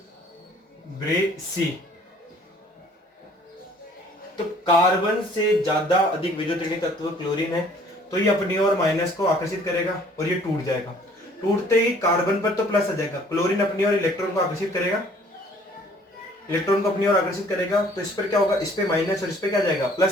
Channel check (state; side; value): normal; both; correlation 0.56